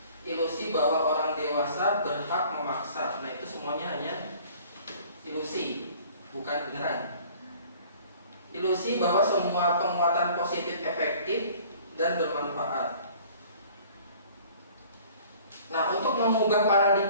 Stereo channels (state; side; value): inverted; both; correlation -0.51